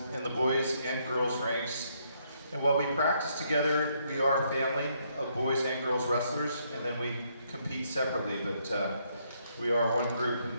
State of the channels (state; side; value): inverted; both; correlation -0.73